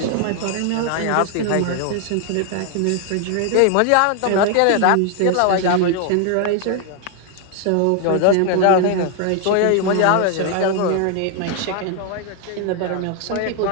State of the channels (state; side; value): different; both; correlation 0.00